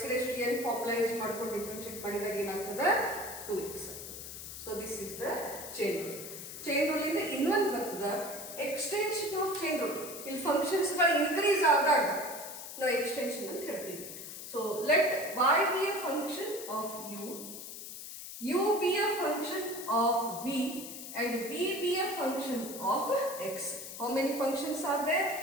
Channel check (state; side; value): noise; left; hiss, 10 dB below the sound